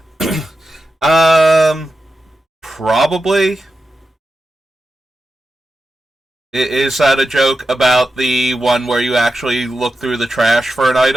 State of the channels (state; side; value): normal; both; correlation 0.90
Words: Probably. Is that a joke about the one where you actually look through the trash for an